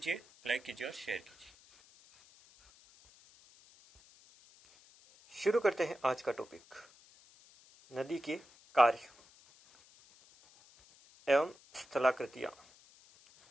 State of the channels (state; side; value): noise; left; hiss, 26 dB below the sound